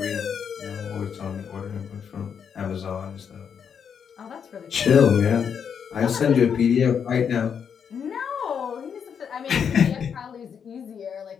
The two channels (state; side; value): quieter; right; 7.3 dB